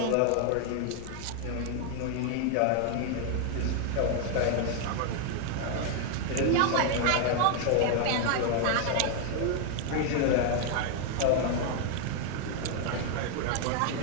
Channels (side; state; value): both; different; correlation 0.00